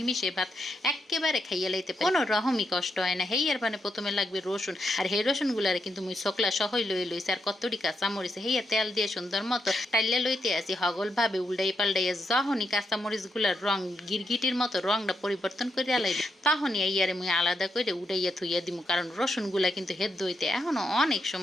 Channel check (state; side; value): normal; both; correlation 0.82